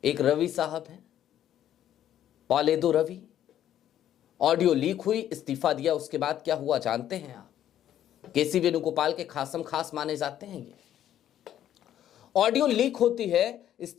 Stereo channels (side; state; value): right; quieter; 11.2 dB